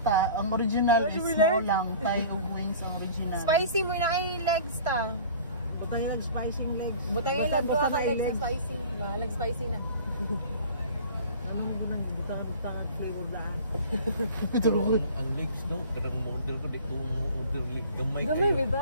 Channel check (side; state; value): both; inverted; correlation -0.43